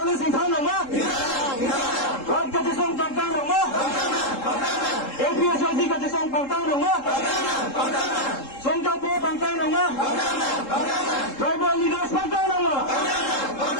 là sinh thang nào má? Rồi cái chia số tăng tăng nào má? APS cái chia số tăng tăng nào má? Song Cao Po tăng tăng nào má? Tribal leaders tăng tăng nào má?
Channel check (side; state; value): right; late; 3.7 ms